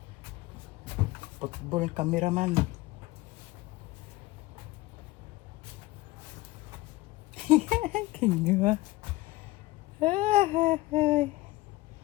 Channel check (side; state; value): right; quieter; 19.1 dB